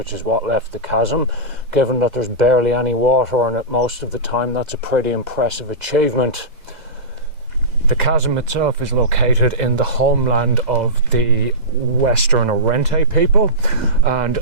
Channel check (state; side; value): late; left; 2.0 ms